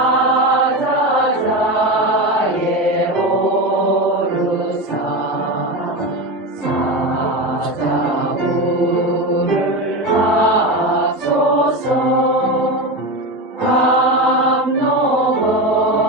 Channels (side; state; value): both; normal; correlation 0.20